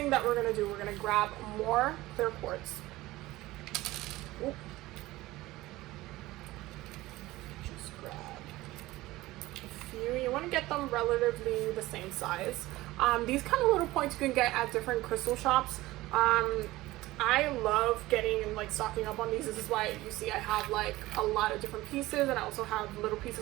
that we're going to do, we're going to grab more clear quartz. Ooh. Just grab a few. You want to get them relatively the same size. These kind of little points you can get at different crystal shops. I love getting and like stocking up on these. This is why you see I have like a lot of different pieces, and I also have little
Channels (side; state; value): left; quieter; 18.1 dB